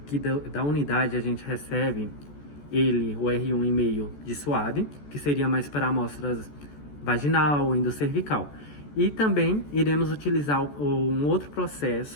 que da unidade a gente recebe o R1,5 de suave, que seria mais para amostras vaginal, endocervical. E também iremos utilizar um outro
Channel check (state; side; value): late; right; 14 ms